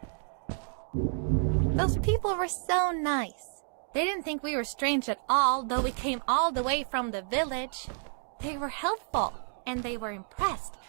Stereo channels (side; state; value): left; silent; 58 dB below the other